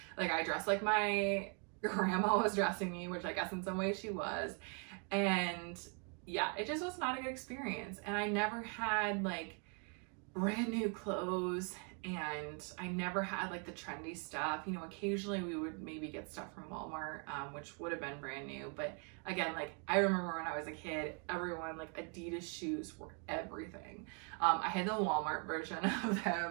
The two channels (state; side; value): quieter; left; 39.0 dB